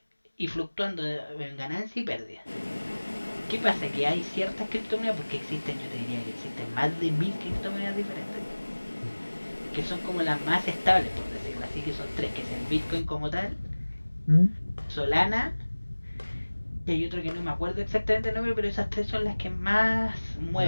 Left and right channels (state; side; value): inverted; both; correlation -1.00